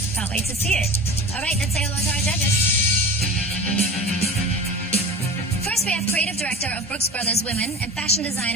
Can't wait to see it. All right, let's say hello to our judges. First, we have creative director of Brooks Brothers Women and fashion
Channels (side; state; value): both; normal; correlation 0.35